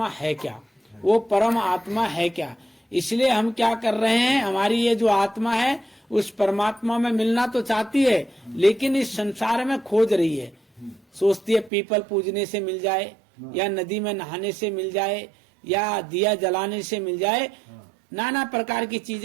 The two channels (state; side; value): drops out; left; at 11.7 s